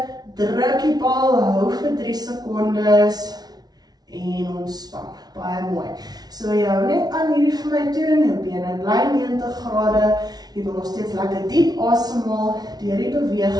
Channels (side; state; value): left; late; 0.19 ms